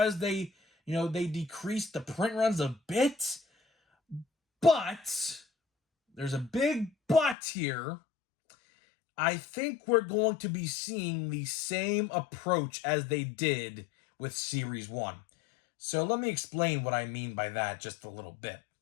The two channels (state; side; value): drops out; right; at 7.4 s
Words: they decreased the print runs a bit. But there's a big but here. I think we're going to be seeing the same approach as they did with Series 1. So let me explain what I mean by that just a little bit.